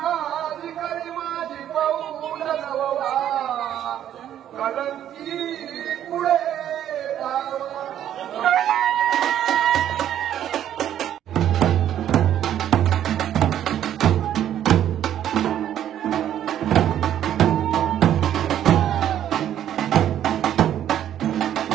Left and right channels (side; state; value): left; quieter; 10.9 dB